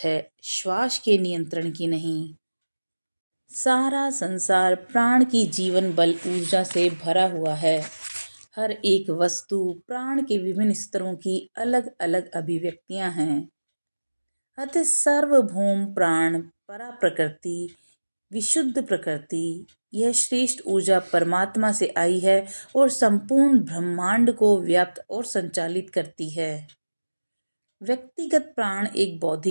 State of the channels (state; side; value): inverted; both; correlation -1.00